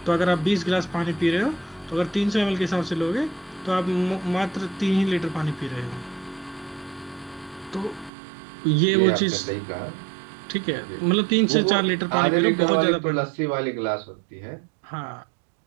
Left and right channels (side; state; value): left; drops out; at 8.1 s